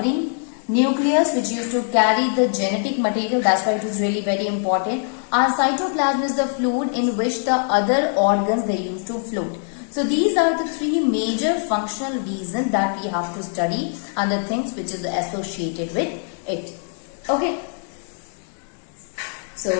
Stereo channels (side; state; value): right; silent; 56 dB below the other